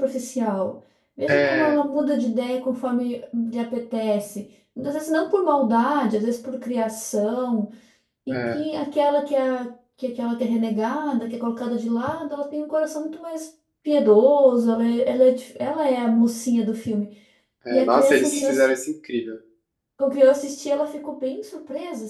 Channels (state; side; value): identical; both; correlation 1.00